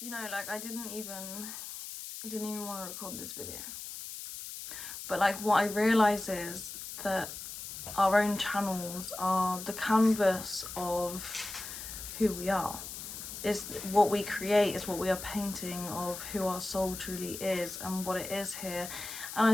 You know, like I didn't even want to record this video. But like what I realise is that our own channels are the canvas of who we are. Is what we create, is what we are painting of who our soul truly is and what it is here. And I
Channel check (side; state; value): left; noise; hiss, 9 dB below the sound